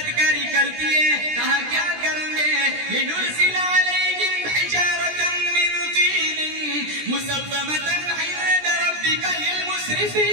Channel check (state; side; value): late; left; 17 ms